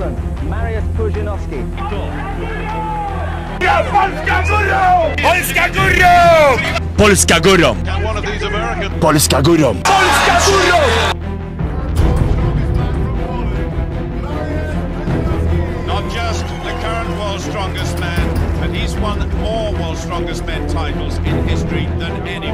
Poland, Mariusz Pudzianowski. Polska górą! Polska górą! Polska górą! Polska górą! Polska górą! Not just the current world's strongest man, but he's won more world's strongest men titles in history than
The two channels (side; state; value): both; identical; correlation 1.00